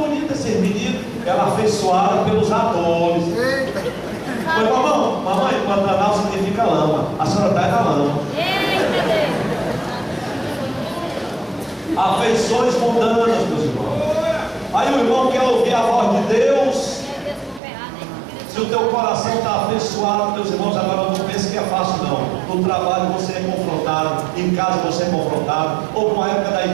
esse menino. Ela afeiçoada pelos atores. Foi, mamãe, Pantanal significa lama. A senhora está na lama. Afeições mundanas, meus irmãos. Aí o irmão quer ouvir a voz de Deus. Se o teu coração está afeiçoado, meus irmãos, agora não pense que é fácil não. No trabalho você é confrontado, em casa você é confrontado. Houve uma época da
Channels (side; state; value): left; drops out; at 17.6 s